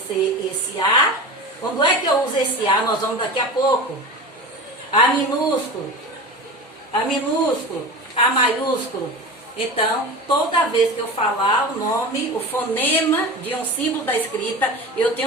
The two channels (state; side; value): normal; both; correlation 0.30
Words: esse A. Quando é que eu uso esse A? Nós vamos daqui a pouco. A minúsculo, A maiúsculo. Então, toda vez que eu falar o nome, o fonema de um símbolo da escrita, eu